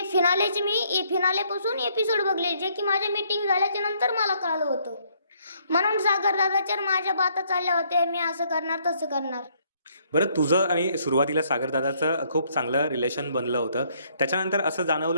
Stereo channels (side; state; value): both; inverted; correlation -0.68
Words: फिनालेचे मी फिनालेपासून एपिसोड बघले, जे की माझ्या मीटिंग झाल्याच्या नंतर मला कळलं होतं. म्हणून सागर दादाच्या माझ्या बाता चालल्या होत्या, मी असं करणार तसं करणार. बरं, तुझं आणि सुरुवातीला सागर दादाचं खूप चांगलं रिलेशन बनलं होतं, त्याच्यानंतर असं